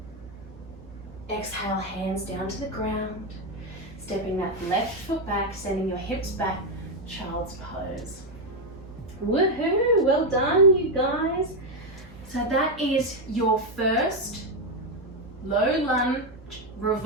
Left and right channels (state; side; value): normal; both; correlation 0.06